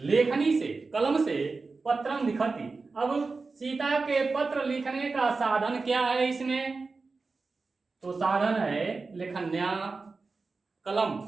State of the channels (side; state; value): left; quieter; 4.1 dB